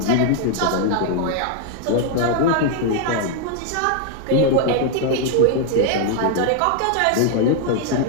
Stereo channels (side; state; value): both; different; correlation 0.00